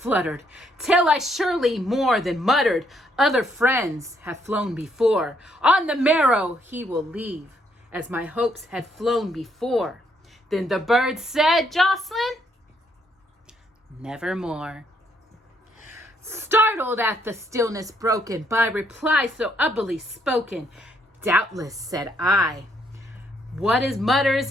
till I surely more than muttered, other friends have flown before. On the marrow he will leave, as my hopes had flown before. Then the bird said, Jocelyn, nevermore. Startled at the stillness broken by reply so ubbly spoken, doubtless, said I, what is mutters,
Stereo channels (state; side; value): normal; both; correlation 0.72